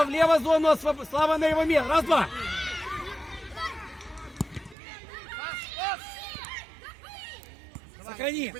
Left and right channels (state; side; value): drops out; left; at 4.8 s